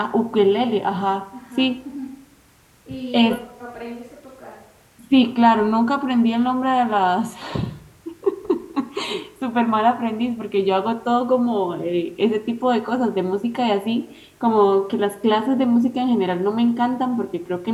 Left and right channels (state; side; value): identical; both; correlation 1.00